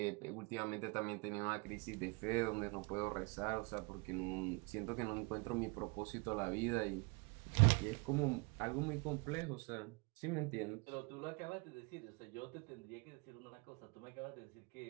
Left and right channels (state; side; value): quieter; left; 30.5 dB